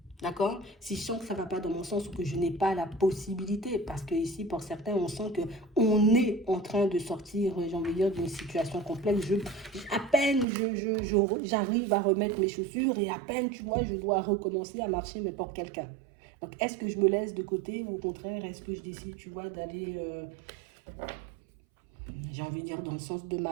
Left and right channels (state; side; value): drops out; left; at 10.5 s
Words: D'accord? Si je sens que ça ne va pas dans mon sens ou que je n'ai pas la possibilité, parce que ici, pour certains, on sent qu'on est en train de sortir, j'ai envie de dire, d'une situation complexe. À peine j'arrive à remettre mes chaussures et à peine, tu vois, je dois recommencer à marcher, mais pour quelqu'un. Donc, est-ce que je me laisse de côté ou au contraire, est-ce que je décide, tu vois, d'aller, j'ai envie de dire, dans le sens de ma